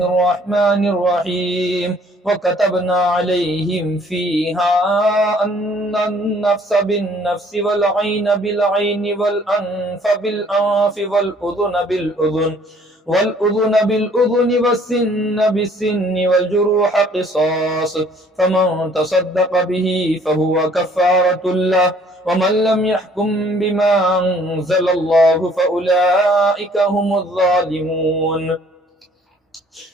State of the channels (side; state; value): both; normal; correlation 0.59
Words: الرحيم وكتبنا عليهم فيها أن النفس بالنفس والعين بالعين والأنف بالأنف والأذن بالأذن والسن بالسن والجروح قصاص فمن تصدق به فهو كفارة له ومن لم يحكم بما أنزل الله فأولئك هم الظالمون